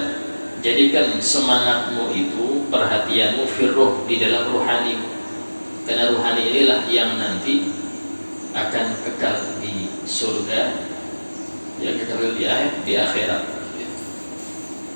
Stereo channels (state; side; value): inverted; both; correlation -1.00